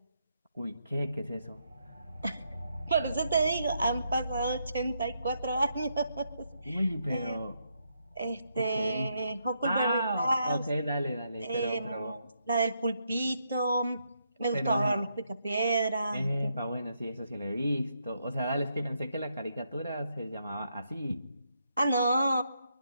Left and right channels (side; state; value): both; inverted; correlation -0.78